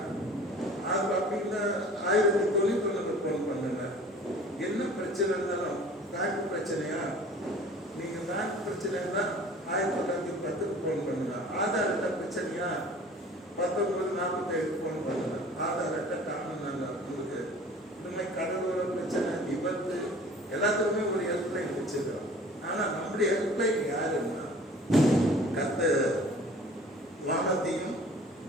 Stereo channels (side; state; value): both; normal; correlation 0.46